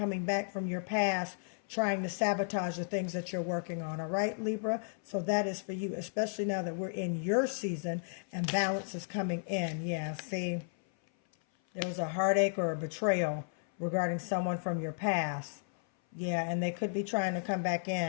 back from your past trying to sabotage the things that you're working on. All right, Libra. So that is for you, especially now that we're in your season and balance is coming in. Yeah. See, there was a heartache or a betrayal regarding someone from your past. Yeah. And they could be trying to come back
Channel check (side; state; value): right; silent; 55 dB below the other